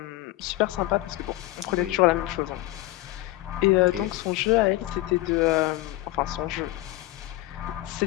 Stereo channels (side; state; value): right; quieter; 17.5 dB